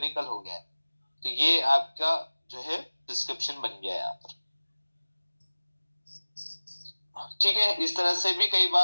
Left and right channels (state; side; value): inverted; both; correlation -1.00